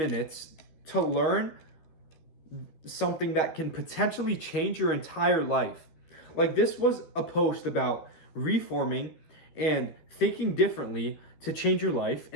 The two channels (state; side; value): late; right; 13 ms